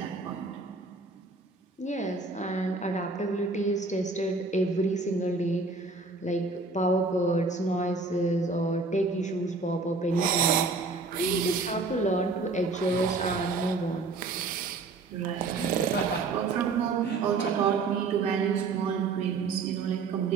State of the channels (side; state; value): left; quieter; 3.9 dB